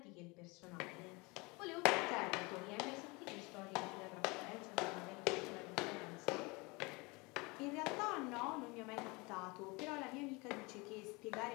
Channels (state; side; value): quieter; right; 26.4 dB